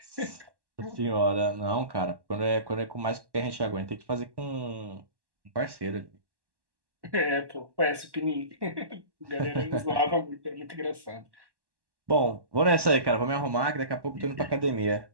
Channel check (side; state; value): left; late; 1.1 ms